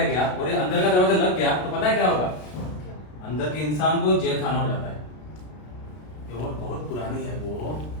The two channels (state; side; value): late; right; 33 ms